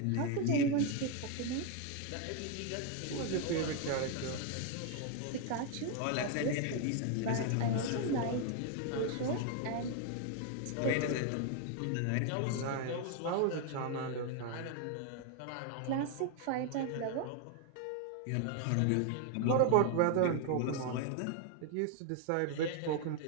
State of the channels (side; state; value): both; different; correlation 0.01